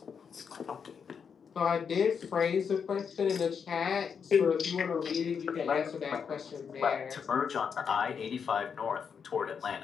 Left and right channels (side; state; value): right; quieter; 6.6 dB